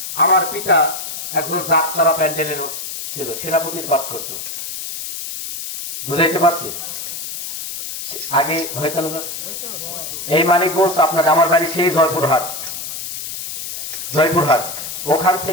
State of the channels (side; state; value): left; noise; hiss, 7 dB below the sound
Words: আমার পিতা একজন যাত্রা প্যান্ডেলের ছিল, সেনাপতির পাঠ করত, বুঝাইতে পারছি আগে হয়তো না। এই মানিকগঞ্জ আপনার, আমার বাড়ি সেই জয়পুরহাট, ওখান